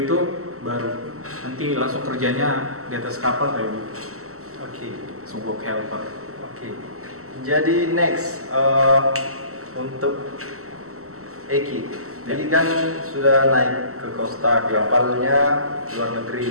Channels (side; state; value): left; late; 0.63 ms